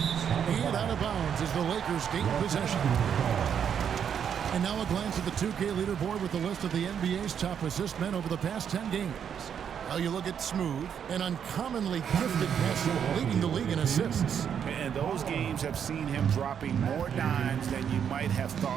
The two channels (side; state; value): left; quieter; 8.1 dB